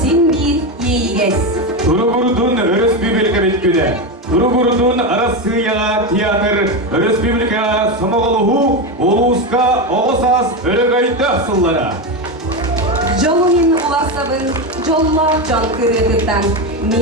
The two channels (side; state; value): both; normal; correlation 0.14